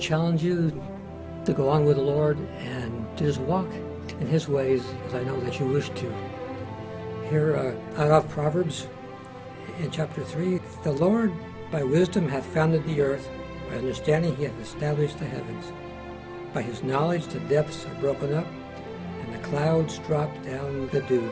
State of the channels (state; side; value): identical; both; correlation 1.00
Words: you to go on with the Lord and to just walk in His ways, as I know that you wish to. Here out of Proverbs in chapter 3, "The Lord by wisdom hath founded the earth, by understanding He hath established the heavens. By His knowledge the depths are broken up, and the clouds drop down the dew.